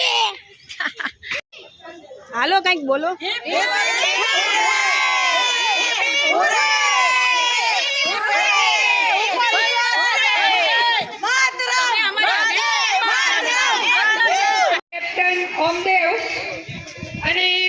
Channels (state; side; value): identical; both; correlation 1.00